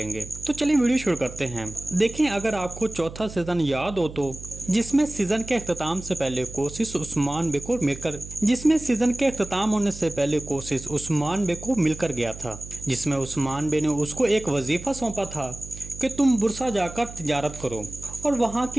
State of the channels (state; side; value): noise; right; hum, 13 dB below the sound